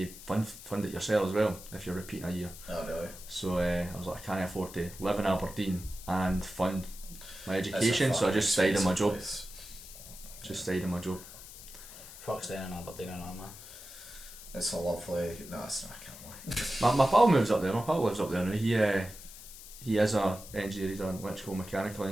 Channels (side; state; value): left; noise; hiss, 15 dB below the sound